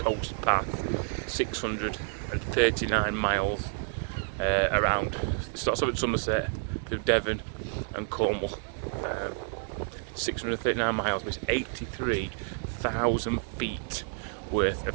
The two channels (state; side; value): silent; left; digital silence